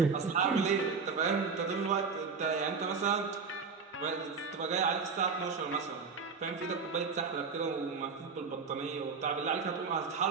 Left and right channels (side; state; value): left; quieter; 5.2 dB